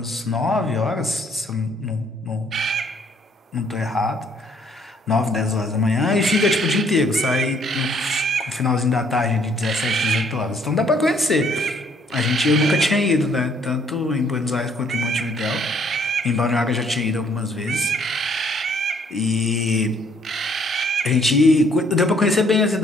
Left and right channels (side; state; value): both; normal; correlation 0.65